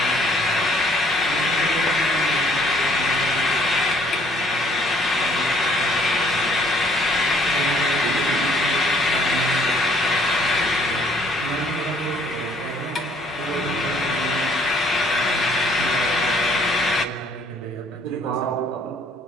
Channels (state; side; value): normal; both; correlation 0.62